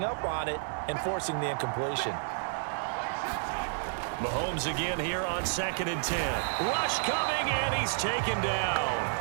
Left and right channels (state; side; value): silent; left; 57 dB below the other